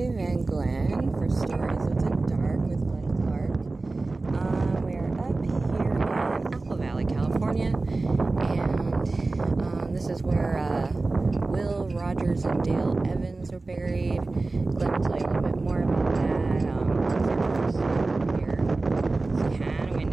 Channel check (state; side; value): quieter; left; 3.4 dB